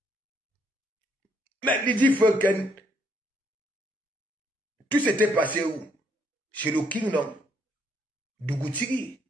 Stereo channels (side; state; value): both; normal; correlation 0.71